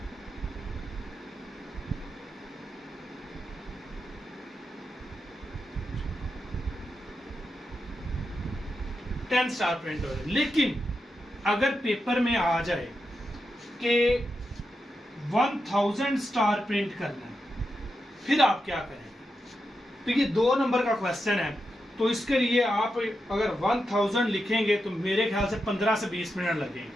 स्टार प्रिंट हो जाए। लेकिन अगर पेपर में आ जाए कि 1000 स्टार प्रिंट करना है, फिर आप क्या करेंगे? तो ये 2 नंबर का क्वेश्चन है, तो इसके लिए आप अगर 1000 लिखेंगे तो मेरे ख्याल से 15 से 20 मिनट लगेंगे।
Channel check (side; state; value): both; normal; correlation 0.87